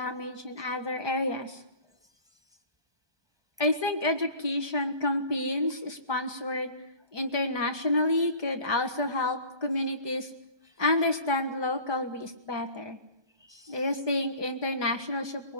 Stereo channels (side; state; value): left; late; 1.2 ms